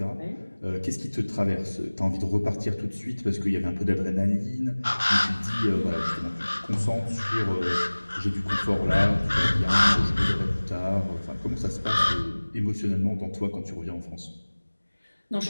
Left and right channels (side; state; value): both; inverted; correlation -1.00